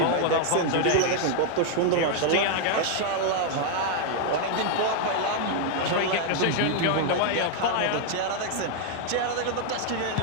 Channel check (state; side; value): different; both; correlation 0.00